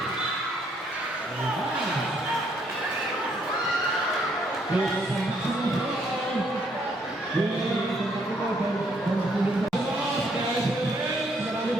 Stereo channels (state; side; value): normal; both; correlation 0.69